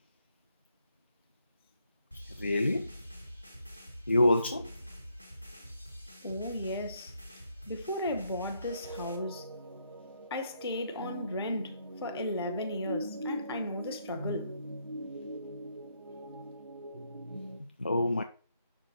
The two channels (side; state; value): both; inverted; correlation -0.75